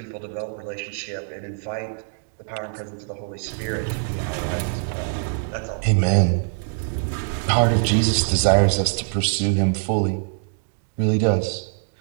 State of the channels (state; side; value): silent; left; digital silence